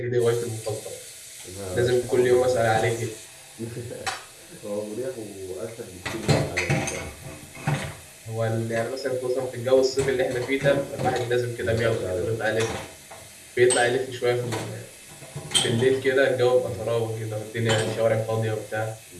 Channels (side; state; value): both; identical; correlation 1.00